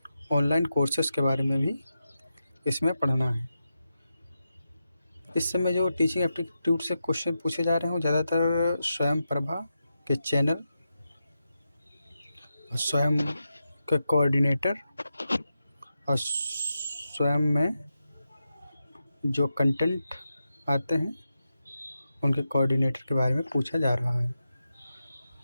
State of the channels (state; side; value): inverted; both; correlation -0.88